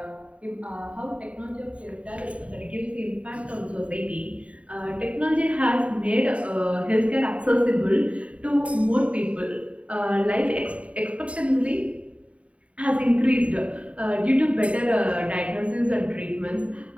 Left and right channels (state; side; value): late; left; 0.065 ms